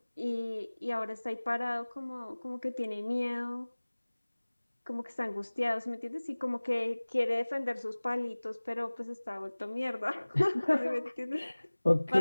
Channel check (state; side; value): inverted; both; correlation -1.00